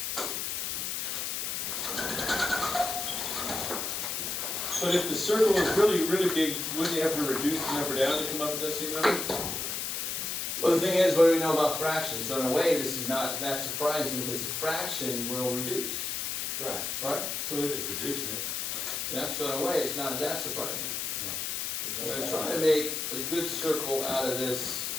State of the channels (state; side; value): noise; left; hiss, 2 dB below the sound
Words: But if the circle is really, really big, wouldn't you have to reduce the number down to come up with that same number? Well, the thing is, what do we know about fractions? So in a way, this is not that surprising because a fraction will reduce. Right. Right? So they're just reducing it. Yeah, so in a way, it's not that surprising. I'm going to try to make a good circle out of this